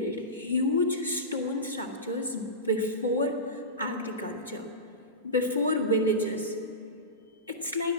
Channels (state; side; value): normal; both; correlation -0.20